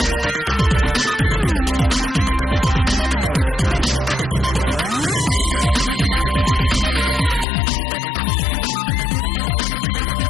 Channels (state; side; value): drops out; right; at 7.5 s